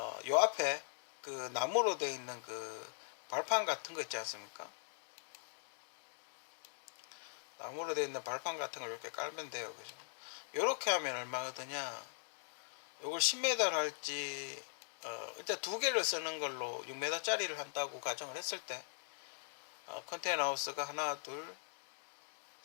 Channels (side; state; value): right; silent; digital silence